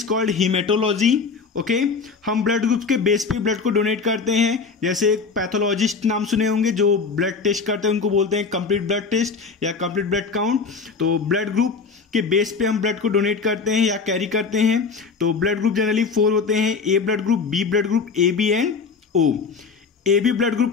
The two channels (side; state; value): right; quieter; 5.0 dB